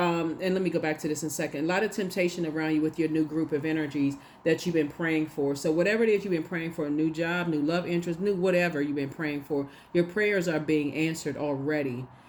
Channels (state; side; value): identical; both; correlation 1.00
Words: me go back to this in a second. A lot of temptation around you with your new group of energies that you've been praying for. So whatever it is you've been praying for, a new job, new love interest, new whatever you've been praying for, your prayers are being answered already.